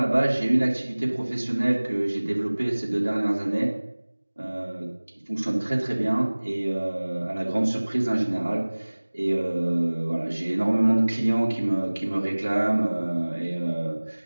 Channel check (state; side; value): inverted; both; correlation -1.00